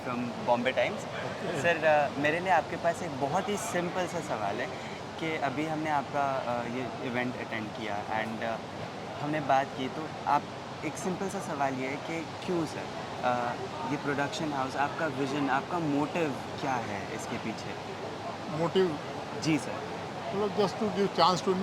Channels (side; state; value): both; identical; correlation 1.00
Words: from Bombay times. Sir मेरे लिए आपके पास एक बहुत ही सिंपल सा सवाल है कि अभी हमने आपका ये इवेंट अटेंड किया एंड हमने बात की, तो आप एक सिंपल सा सवाल ये है कि क्यों सर ये प्रोडक्शन हाउस, आपका विज़न, आपका मोटिव क्या है इसके पीछे? मोटिव? जी sir. Just to give chance to